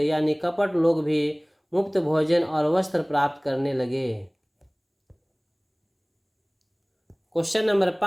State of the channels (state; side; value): identical; both; correlation 1.00